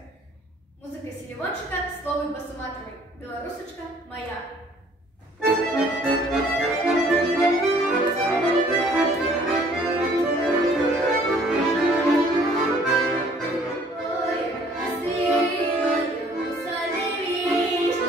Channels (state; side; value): normal; both; correlation 0.57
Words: Музика Селівончика, слово Басуматовой. Белорусочка моя.